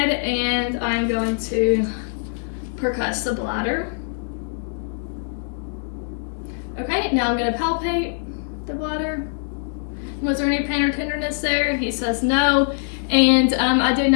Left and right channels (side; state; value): right; silent; digital silence